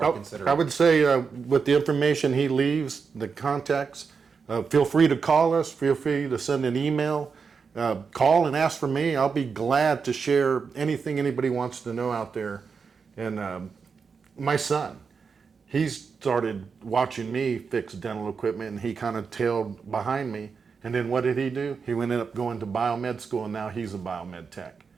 considering? I would say with the information he leaves, the contacts, feel free to call us. Feel free to send an email. Call and ask for me. I'll be glad to share anything anybody wants to know out there. And my son, he started watching me fix dental equipment, and he kind of tailed behind me. And then what did he do? He ended up going to biomed school, and now he's a biomed tech.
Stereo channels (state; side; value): quieter; left; 5.5 dB